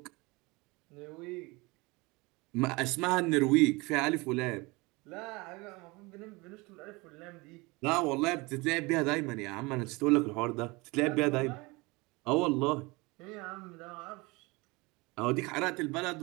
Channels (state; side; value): quieter; left; 24.9 dB